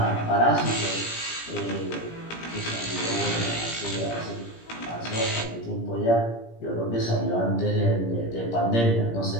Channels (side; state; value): right; late; 17 ms